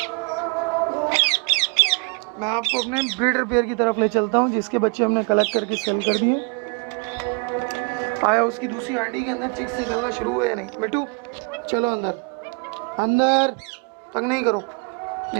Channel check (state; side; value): quieter; left; 34.1 dB